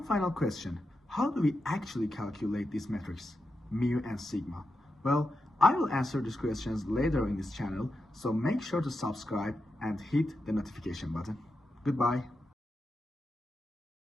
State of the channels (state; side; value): normal; both; correlation 0.88